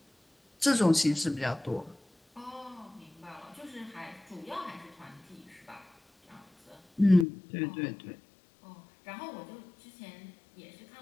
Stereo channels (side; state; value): right; drops out; at 7.2 s